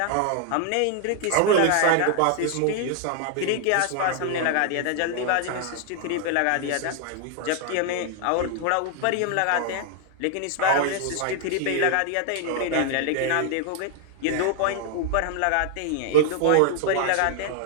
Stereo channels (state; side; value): different; both; correlation 0.00